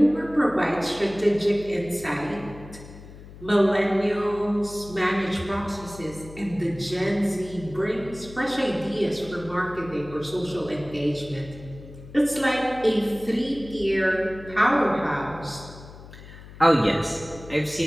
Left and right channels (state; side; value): noise; left; hum, 17 dB below the sound